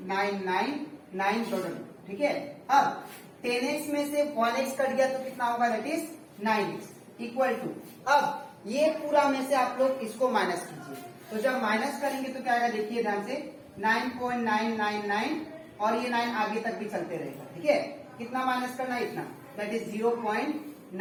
डॉट डॉट। ठीक है, अब 10x में से 1x कट गया तो कितना होगा, that is 9x equal to, अब ये पूरा में से आप लोग इसको माइनस कीजिए, तो जब माइनस करेंगे तो क्या आएगा, देखिए ध्यान से 9.999 और ये 9 आगे तक भी चलते रहेगा, ठीक है। कितना माइनस करना है, इतना, दैट इज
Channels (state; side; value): identical; both; correlation 1.00